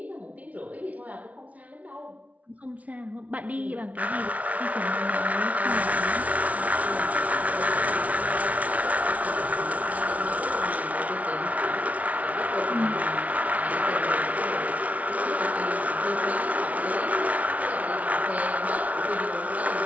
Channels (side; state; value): left; late; 0.069 ms